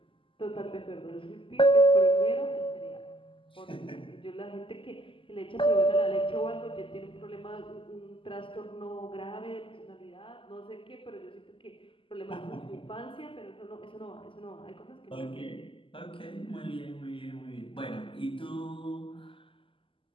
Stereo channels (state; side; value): late; right; 0.25 ms